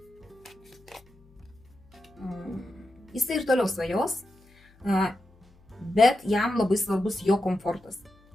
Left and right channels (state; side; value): noise; left; hum, 29 dB below the sound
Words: Jisai ir toliau svajos, bet jam labai svarbus jo komfortas.